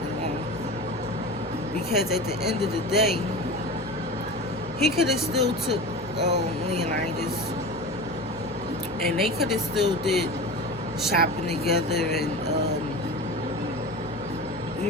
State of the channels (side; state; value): both; normal; correlation 0.31